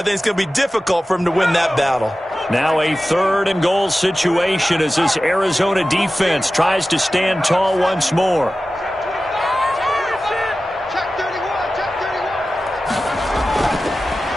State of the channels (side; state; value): both; normal; correlation 0.95